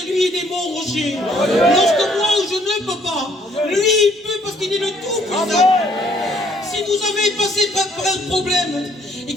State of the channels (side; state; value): both; normal; correlation 0.64